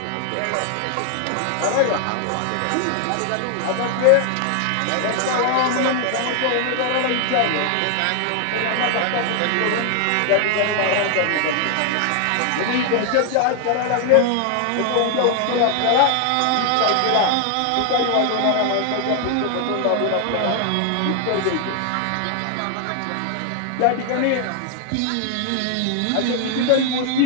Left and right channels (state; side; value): different; both; correlation 0.00